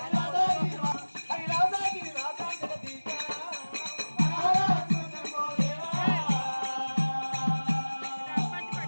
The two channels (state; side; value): inverted; both; correlation -1.00